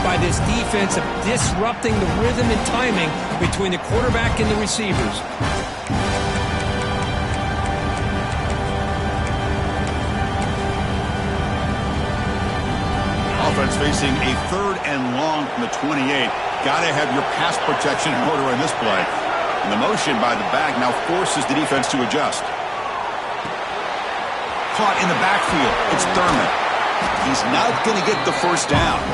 by this defense of disrupting the rhythm and timing between the quarterback and the receivers. Offense facing a 3rd and long from the 28. Got to have your pass protection in order in this play. And the motion by the back now forces the defense to adjust. Caught in the backfield. It's Thurman. He's not going to get the 1st down.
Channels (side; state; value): both; identical; correlation 1.00